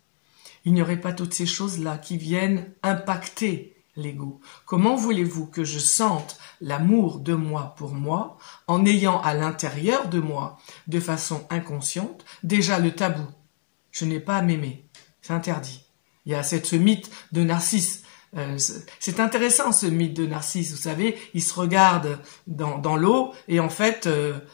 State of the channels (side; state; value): right; silent; digital silence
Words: Il n'y aurait pas toutes ces choses-là qui viennent impacter l'ego. Comment voulez-vous que je sente l'amour de moi pour moi en ayant à l'intérieur de moi, de façon inconsciente, déjà le tabou? Je n'ai pas à m'aimer, c'est interdit. Il y a ce mythe de Narcisse. C'est intéressant ce mythe de Narcisse, vous savez, il se regarde dans l'eau et en fait,